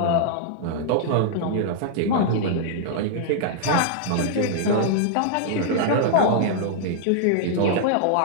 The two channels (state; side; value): different; both; correlation -0.01